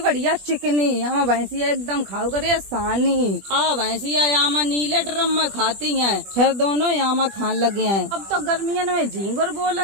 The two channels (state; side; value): late; left; 20 ms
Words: चिकनी। हम भैंसिया एकदम खाओ करे सानी। भैंसिया यहाँ नीले ड्रम में खाती हैं, फिर दोनों यहाँ खान लगे हैं। अब तो गर्मियन में झींगुर